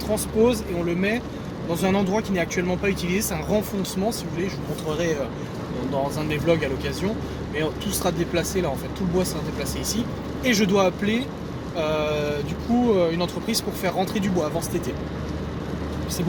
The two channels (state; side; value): identical; both; correlation 1.00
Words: et on le met dans un endroit qui n'est actuellement pas utilisé, c'est un renfoncement si vous voulez, je vous montrerai dans un de mes vlogs à l'occasion, mais tout sera déplacé là en fait, tout le bois sera déplacé ici, et je dois appeler une entreprise pour faire rentrer du bois avant cet été. C'est